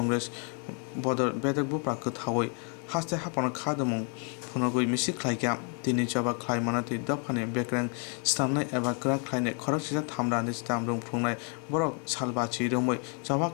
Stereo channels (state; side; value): quieter; right; 39.1 dB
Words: बदर बेदक बुप्रा कथावै हास्ते हाफाना खादमुं फुनगुइ मिसि क्लाइका तिनि जबा क्लाइमाना ति दफाने बेक्रें स्टामनाय एबा क्रा क्लाइने खरक सिजा थामरानि स्टाम रुं फुंनाय बरक सालबाची रोमै जबा